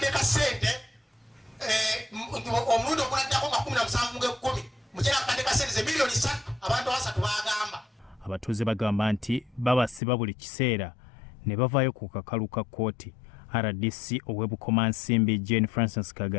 ka ssente omulundi oguladdako nga 17 mukyera akakadde ka ssente ze miliyoni 3 abantu 3 bagamba. Abatuuze bagamba nti babasiba buli kiseera ne bavaayo ku kakalu ka kkooti. RDC ow'Ebukomansimbi Jane Francis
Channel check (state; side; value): drops out; right; at 10.0 s